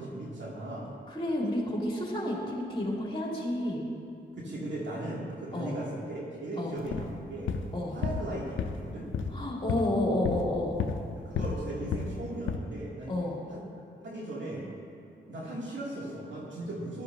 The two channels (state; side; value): normal; both; correlation 0.67